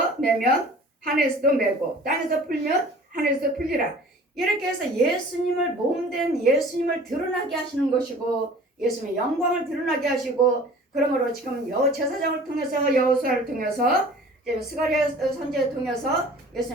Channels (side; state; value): both; normal; correlation 0.46